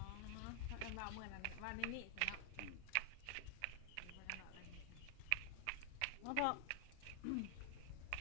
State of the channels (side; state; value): both; different; correlation 0.00